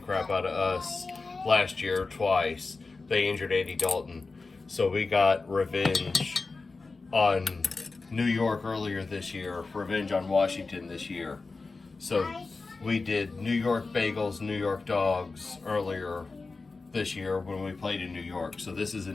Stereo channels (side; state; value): right; quieter; 3.9 dB